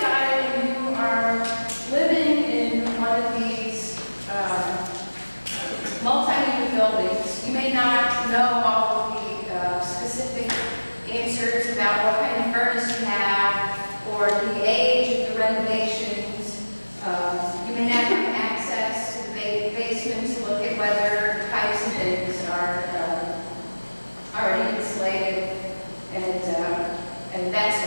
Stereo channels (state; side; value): inverted; both; correlation -1.00